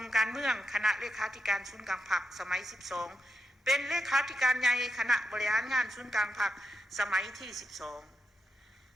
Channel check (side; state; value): both; normal; correlation 0.86